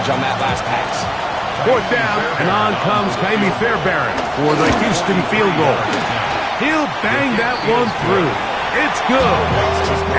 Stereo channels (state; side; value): identical; both; correlation 1.00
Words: on that last pass. 4th down, and on comes Kaimi Fairbairn for the Houston field goal. He'll bang that one through. It's good.